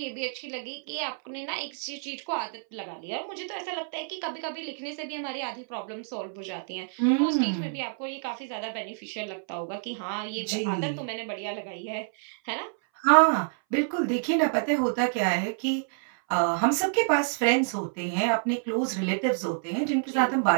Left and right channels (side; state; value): left; silent; 59 dB below the other